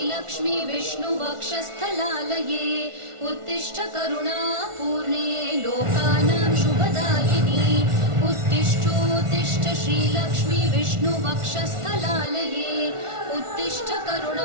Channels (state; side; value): late; left; 1.4 ms